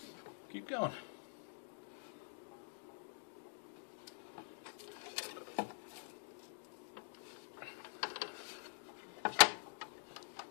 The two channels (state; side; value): silent; right; digital silence